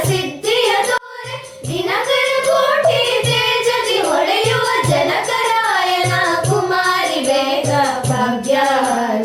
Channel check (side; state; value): both; identical; correlation 1.00